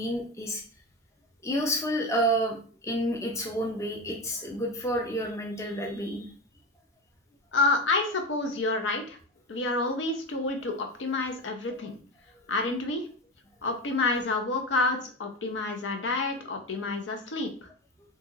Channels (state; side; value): normal; both; correlation 0.21